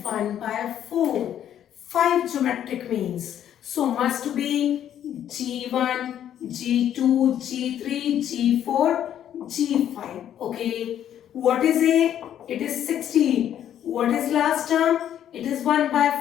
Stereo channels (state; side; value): quieter; right; 10.4 dB